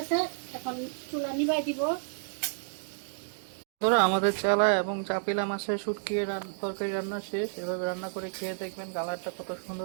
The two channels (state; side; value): silent; left; digital silence